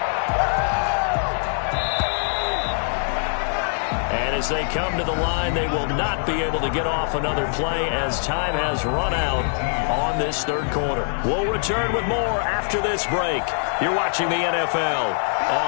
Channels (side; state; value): right; silent; 63 dB below the other